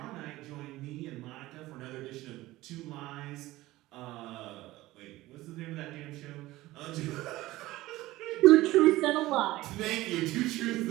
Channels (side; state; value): left; quieter; 17.7 dB